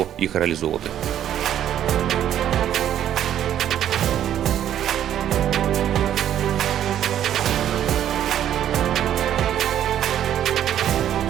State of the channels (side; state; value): left; quieter; 10.7 dB